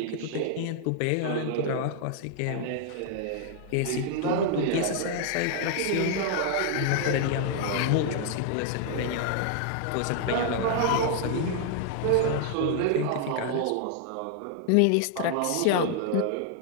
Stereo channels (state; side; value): different; both; correlation 0.00